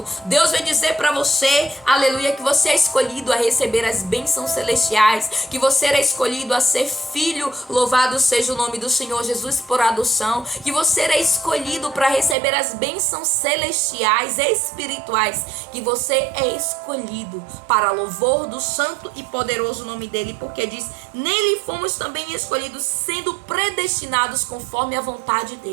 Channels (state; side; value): drops out; left; at 12.4 s